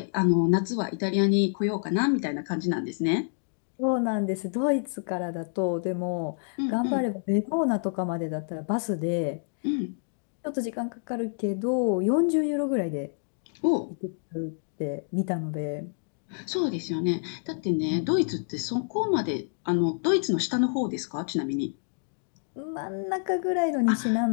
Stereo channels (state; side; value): silent; right; digital silence